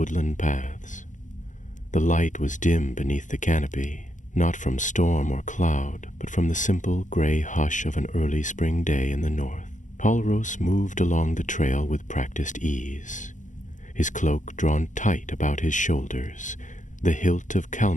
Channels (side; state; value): right; late; 0.37 ms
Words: paths. The light was dim beneath the canopy, not from storm or cloud, but from the simple gray hush of an early spring day in the north. Halros moved along the trail with practiced ease, his cloak drawn tight about his shoulders, the hilt of